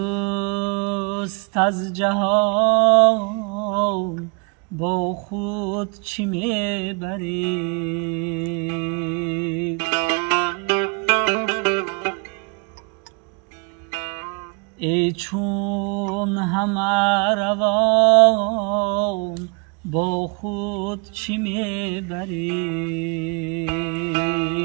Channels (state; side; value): quieter; left; 35.2 dB